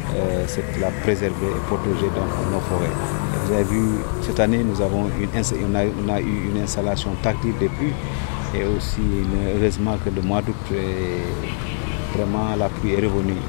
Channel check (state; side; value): silent; right; digital silence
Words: la préserver et protéger nos forêts. Vous avez vu, cette année, on a eu une installation tactile des pluies et aussi, heureusement que le mois d'août, vraiment la pluie est revenue